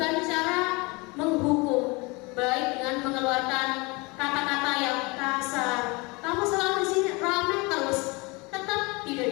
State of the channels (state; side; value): quieter; right; 26.5 dB